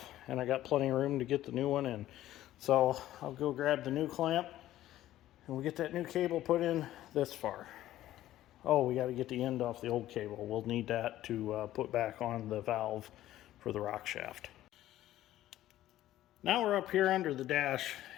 and I got plenty of room to get the new one in. So I'll go grab the new clamp, and we'll get that new cable put in this far. Oh, we got to get the end off the old cable. We'll need that to put back on the valve for the rock shaft. Now we're up here under the dash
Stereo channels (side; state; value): right; quieter; 13.9 dB